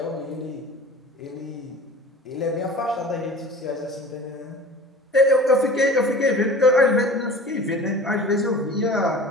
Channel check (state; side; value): normal; both; correlation 0.41